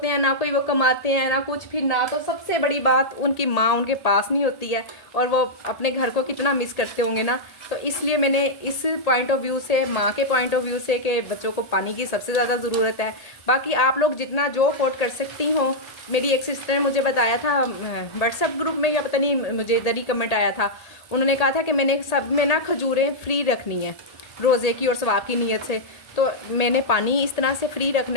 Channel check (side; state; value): right; late; 1.8 ms